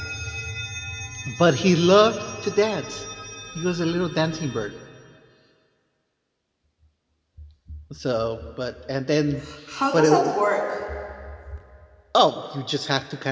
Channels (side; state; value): both; identical; correlation 1.00